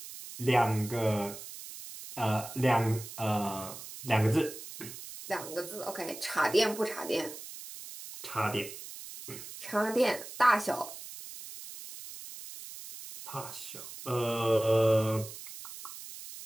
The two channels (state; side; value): noise; right; hiss, 12 dB below the sound